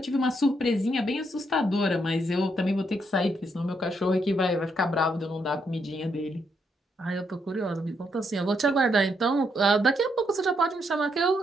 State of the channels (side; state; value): both; normal; correlation 0.77